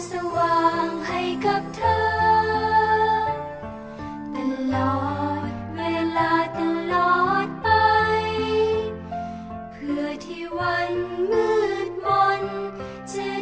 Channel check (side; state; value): both; identical; correlation 1.00